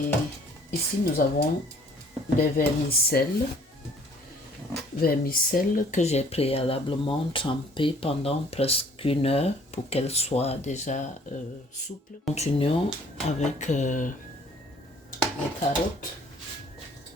ici, nous avons des vermicelles. Vermicelles que j'ai préalablement trempées pendant presque 1 heure pour qu'elles soient déjà souples. Continuons avec les carottes.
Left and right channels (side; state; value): both; normal; correlation 0.57